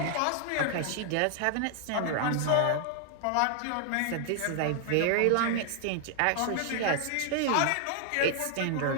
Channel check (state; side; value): different; both; correlation 0.00